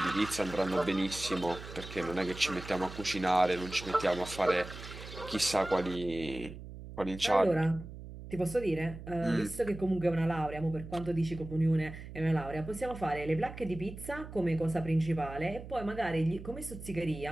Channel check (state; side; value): noise; right; hum, 12 dB below the sound